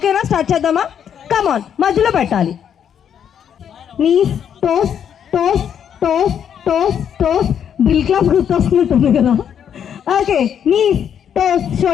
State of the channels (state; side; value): quieter; right; 8.6 dB